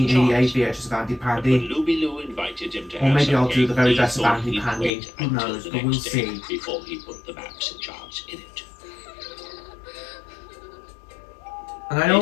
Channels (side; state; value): right; drops out; at 4.9 s